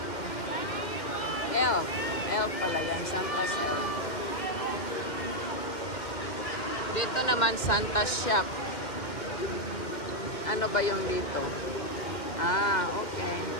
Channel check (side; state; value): right; late; 2.1 ms